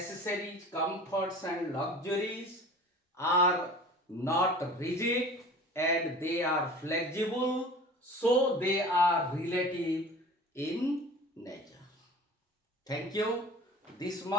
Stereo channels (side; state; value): both; normal; correlation 0.41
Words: comforts and luxuries are not rigid and they are flexible, so they are relative in nature. Thank you. This